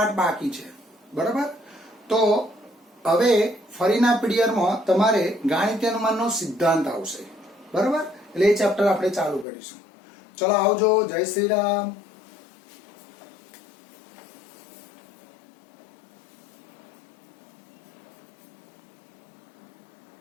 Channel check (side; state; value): right; drops out; at 9.5 s